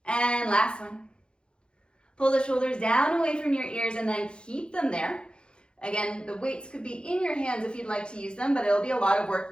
And last one. Pull the shoulders down away from your ears and then keep them there. Again, the weights could be in your hands if you'd like to use them, but it'll be a lot of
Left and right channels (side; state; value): right; late; 0.052 ms